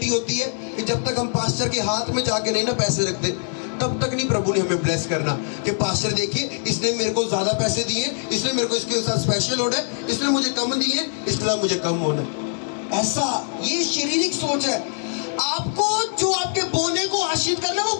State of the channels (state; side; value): silent; right; 64 dB below the other